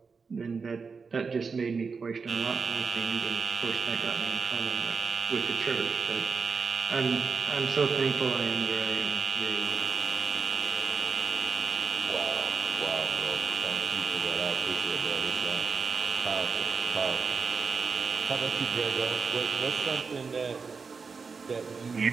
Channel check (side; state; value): left; quieter; 5.1 dB